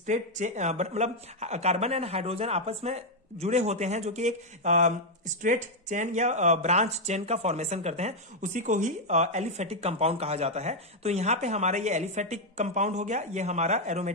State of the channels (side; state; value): both; normal; correlation 0.00